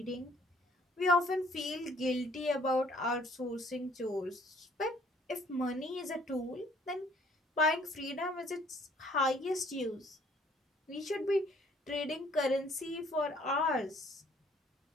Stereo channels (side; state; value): both; normal; correlation 0.60